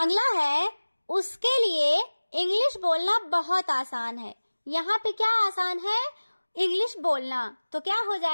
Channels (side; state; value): both; inverted; correlation -1.00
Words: है, उसके लिए इंग्लिश बोलना बहुत आसान है। यहाँ पे क्या आसान है? इंग्लिश बोलना। तो क्या हो